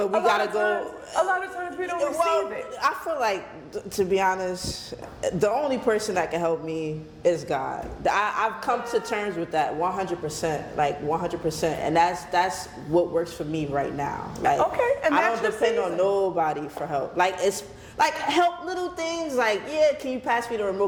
we gotta go. A lot of times we don't receive it. I feel like, to be honest, the only person that can help me is God. I've come to terms with that 100%, like 100%, and that's what works for me right now. Like, Okay, and I that's don't your depend on season. nobody for help. Like Like help little things like, yeah, can you pass me the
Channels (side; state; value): both; identical; correlation 1.00